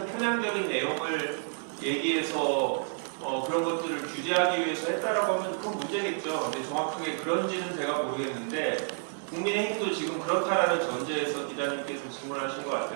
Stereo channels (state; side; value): silent; left; digital silence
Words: 편향적인 내용을 얘기해서 그런 것들을 규제하기 위해서 했다라고 하면 그건 문제겠죠. 근데 정확하게 그런지는 제가 모르겠는데 국민의힘도 지금 그렇다라는 전제에서 기자님께서 질문하신 것